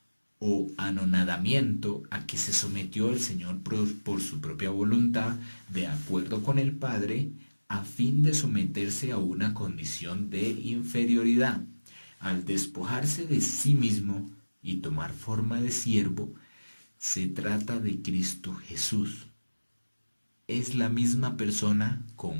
o anonadamiento a que se sometió el Señor por su propia voluntad, de acuerdo con el Padre, a fin de someterse a una condición de inferioridad. Al despojarse de sí mismo y tomar forma de siervo, se trata de Cristo Jesús. Es la misma persona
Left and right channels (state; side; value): inverted; both; correlation -1.00